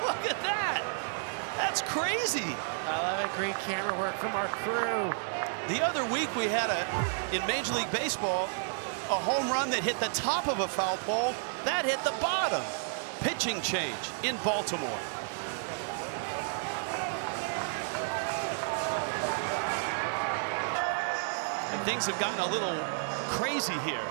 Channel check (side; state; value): left; silent; digital silence